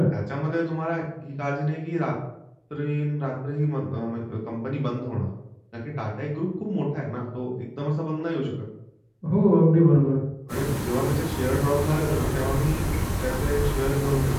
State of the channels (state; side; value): identical; both; correlation 1.00